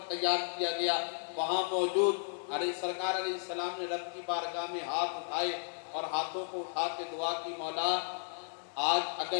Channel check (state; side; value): silent; right; digital silence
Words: تیار کیا گیا وہاں موجود سرکار علیہ السلام نے رب کی بارگاہ میں ہاتھ اٹھائے اور ہاتھوں کو اٹھا کے دعا کی، مولا آج